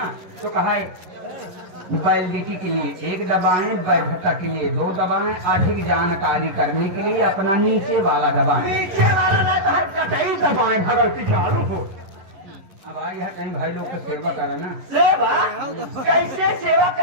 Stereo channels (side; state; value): left; late; 11 ms